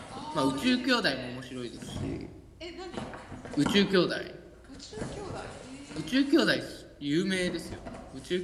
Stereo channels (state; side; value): identical; both; correlation 1.00